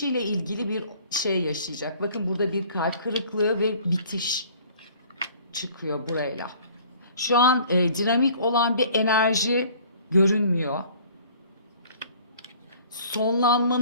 ilgili bir şey yaşayacak. Bakın burada bir kalp kırıklığı ve bitiş çıkıyor burayla. Şu an dinamik olan bir enerji görünmüyor.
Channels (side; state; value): both; inverted; correlation -0.52